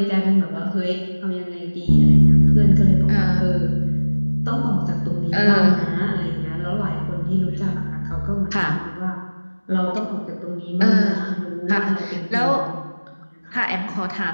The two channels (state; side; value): inverted; both; correlation -1.00